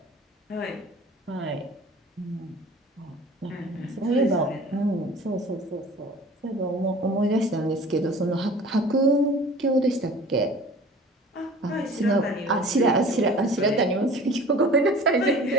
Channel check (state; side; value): normal; both; correlation 0.44